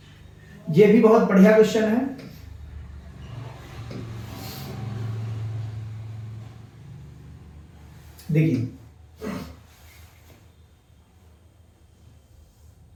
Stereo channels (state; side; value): identical; both; correlation 1.00